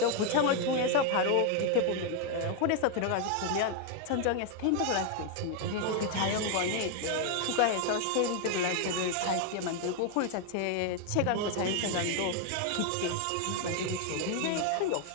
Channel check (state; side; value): different; both; correlation 0.00